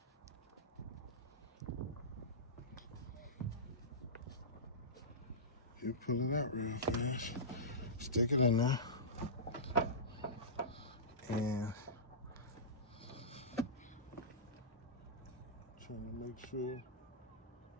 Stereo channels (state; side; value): normal; both; correlation -0.19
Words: You pull it out real fast, stick it in there, and trying to make sure